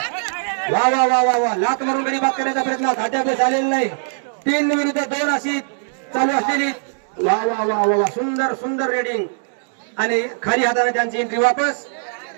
वा वा वा वा वा. लात मारून गडी बाद करण्याचा प्रयत्न अद्याप झालेला नाही. 3 विरुद्ध 2 अशी चालू असलेली. वा वा वा वा वा सुंदर सुंदर रेडिंग. आणि खाली हाताने त्यांची एंट्री वापस.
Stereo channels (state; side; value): silent; left; digital silence